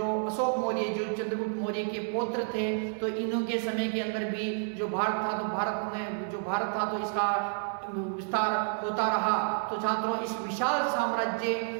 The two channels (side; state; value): left; silent; digital silence